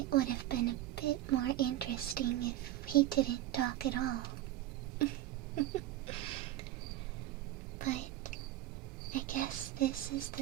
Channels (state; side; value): quieter; left; 14.3 dB